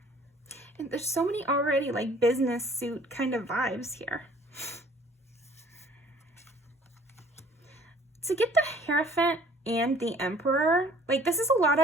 And there's so many already like business suit kind of vibes here. To get the Hierophant and the Emperor, like this is a lot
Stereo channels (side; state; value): both; normal; correlation 0.54